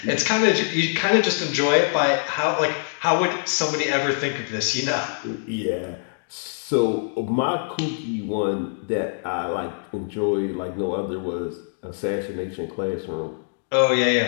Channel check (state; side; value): silent; right; digital silence